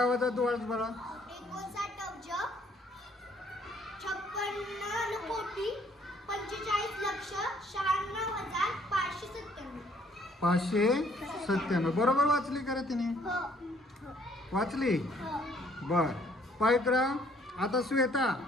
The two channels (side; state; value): both; normal; correlation 0.63